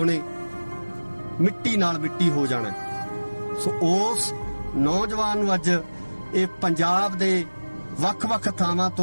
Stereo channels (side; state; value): both; inverted; correlation -1.00